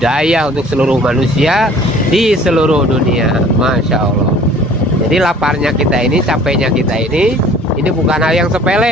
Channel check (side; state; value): both; normal; correlation 0.51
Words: untuk seluruh manusia di seluruh dunia. Masya Allah. Jadi laparnya kita ini, capeknya kita ini bukan hal yang